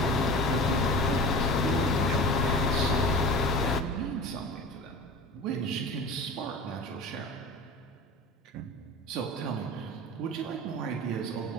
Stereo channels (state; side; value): normal; both; correlation 0.35